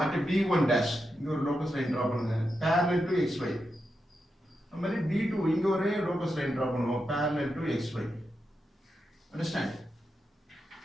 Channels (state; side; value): normal; both; correlation 0.87